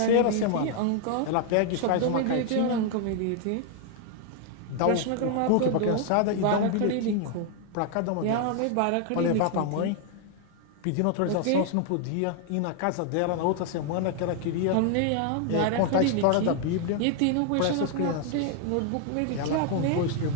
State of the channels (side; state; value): both; different; correlation 0.00